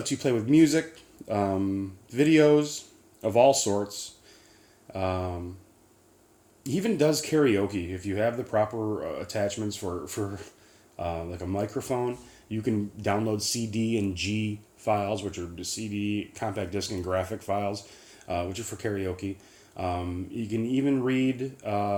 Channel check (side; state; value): both; identical; correlation 1.00